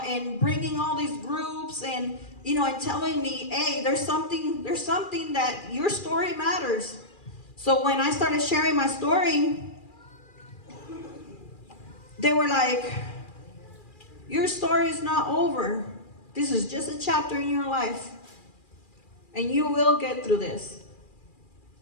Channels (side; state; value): right; late; 2.4 ms